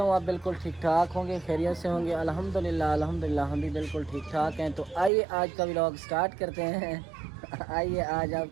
हूँ आप बिल्कुल ठीक ठाक होंगे, खैरियत से होंगे। अल्हम्दुलिल्लाह अल्हम्दुलिल्लाह हम भी बिल्कुल ठीक ठाक हैं। तो आइए आज का व्लॉग स्टार्ट करते हैं। आइए आज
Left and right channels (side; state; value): left; drops out; at 5.1 s